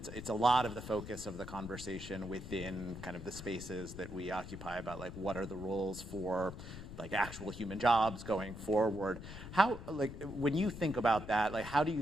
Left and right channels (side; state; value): left; noise; rumble, 11 dB below the sound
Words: focus of the conversation within kind of the spaces that we occupy about like what are the roles for like actual human jobs going forward. How, like, when you think about that, like, how do you